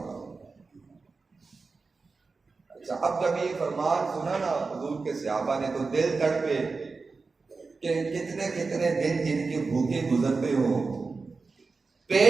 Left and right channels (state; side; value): quieter; left; 4.2 dB